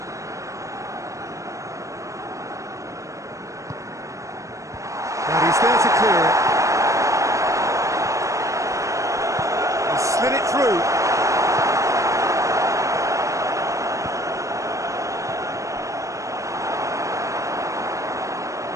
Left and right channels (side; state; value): left; late; 0.15 ms